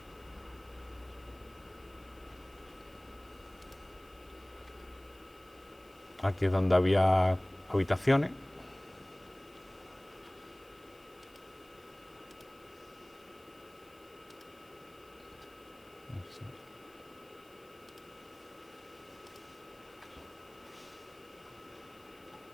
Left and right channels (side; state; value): left; noise; hiss, 28 dB below the sound